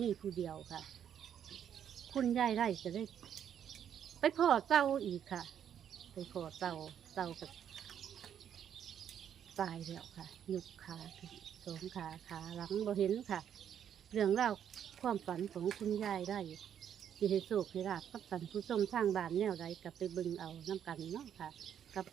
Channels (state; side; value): quieter; left; 9.1 dB